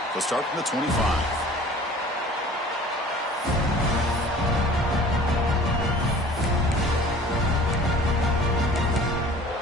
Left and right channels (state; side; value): normal; both; correlation 0.47